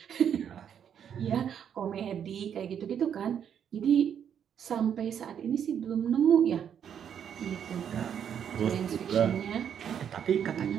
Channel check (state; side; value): quieter; left; 8.6 dB